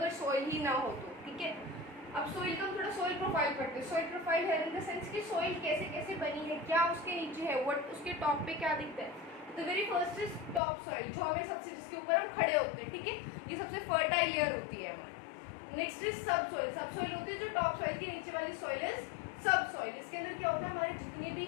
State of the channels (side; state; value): right; drops out; at 10.6 s